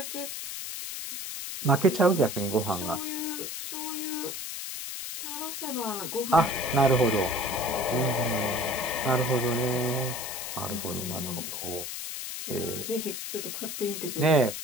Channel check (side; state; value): left; noise; hiss, 6 dB below the sound